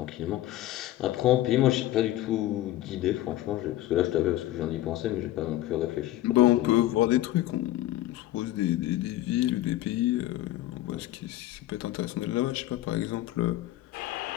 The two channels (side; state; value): right; quieter; 15.0 dB